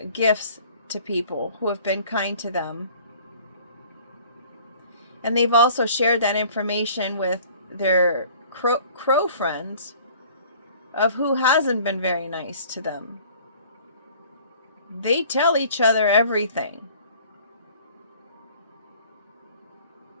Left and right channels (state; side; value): inverted; both; correlation -0.51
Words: gifts to people who have been kind to them. And they've also shared that information with their crow friends of who hasn't been very nice to them. They tell each other everything.